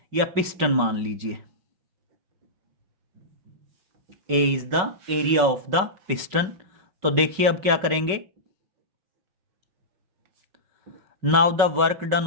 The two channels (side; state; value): left; late; 5.3 ms